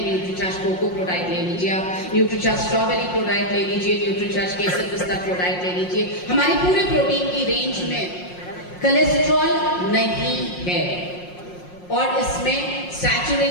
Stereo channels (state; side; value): late; right; 5.6 ms